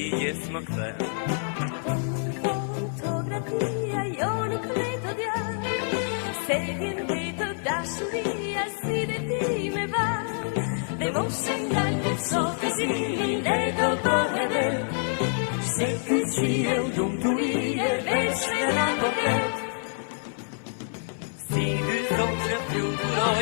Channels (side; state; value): right; silent; 57 dB below the other